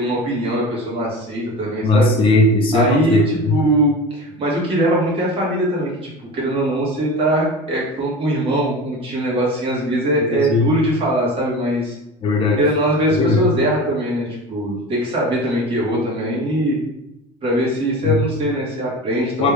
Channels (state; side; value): normal; both; correlation 0.33